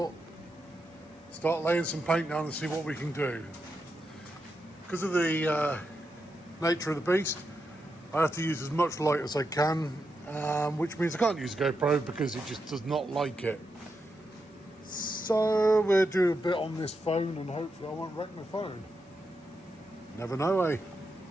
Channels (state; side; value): normal; both; correlation 0.85